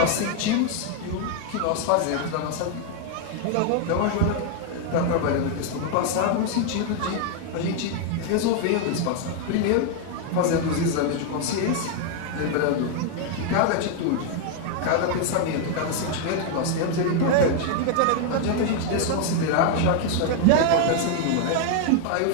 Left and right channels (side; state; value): both; different; correlation 0.00